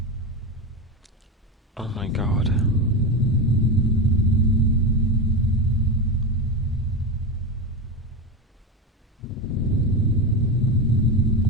Oh my god.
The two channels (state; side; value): normal; both; correlation 0.17